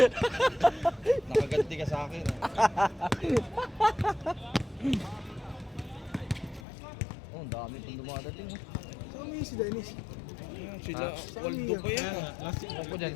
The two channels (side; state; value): right; drops out; at 6.6 s